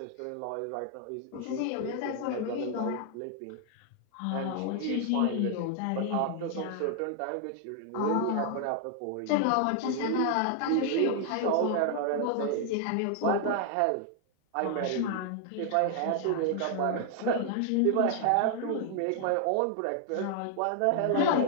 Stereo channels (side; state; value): both; different; correlation 0.00